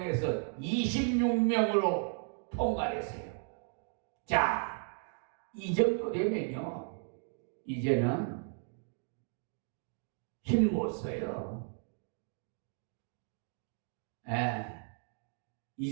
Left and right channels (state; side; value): silent; left; 54 dB below the other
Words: 26명으로 통과했어요. 자, 이 정도 되면요, 이제는 힘 못 써요.